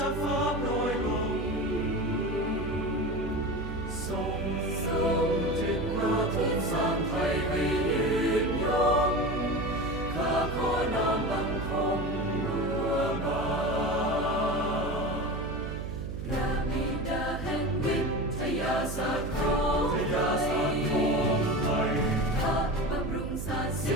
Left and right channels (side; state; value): right; noise; hum, 6 dB below the sound